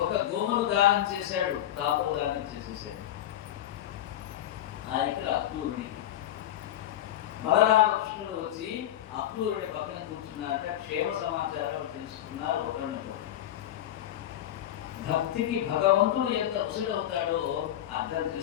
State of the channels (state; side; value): quieter; right; 12.1 dB